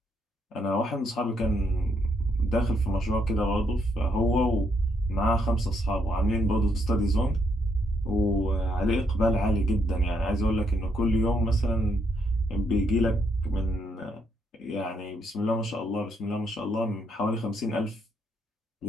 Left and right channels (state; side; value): normal; both; correlation 0.75